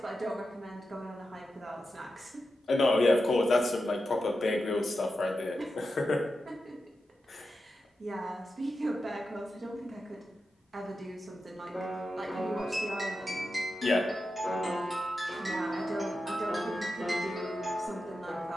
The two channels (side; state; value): both; normal; correlation 0.90